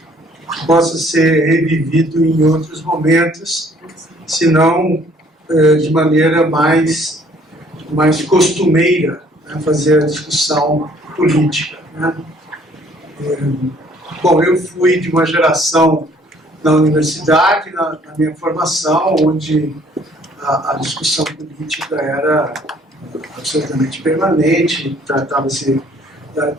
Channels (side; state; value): both; normal; correlation 0.60